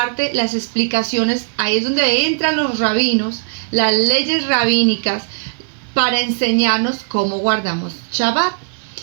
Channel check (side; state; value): left; silent; 55 dB below the other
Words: las explicaciones, ahí es donde entran los rabinos, las leyes rabínicas, para enseñarnos cómo guardamos Shabbat.